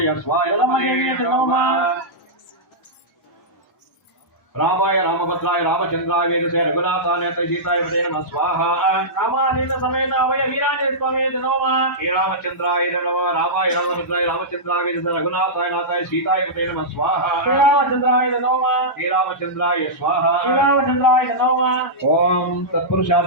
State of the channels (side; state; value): both; normal; correlation -0.13